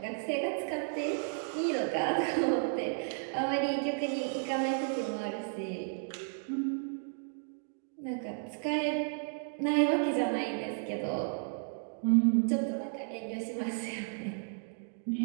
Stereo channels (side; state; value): left; silent; digital silence